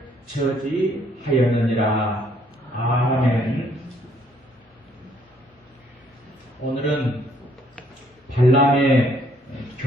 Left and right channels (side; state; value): both; normal; correlation 0.65